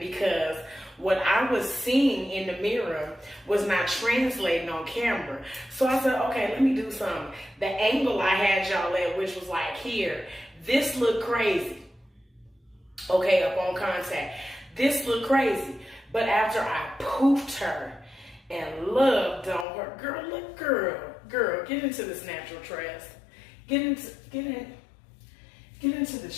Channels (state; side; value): drops out; right; at 19.7 s